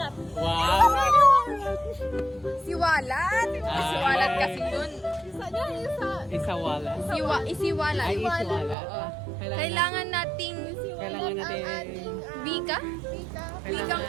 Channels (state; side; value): drops out; left; at 8.8 s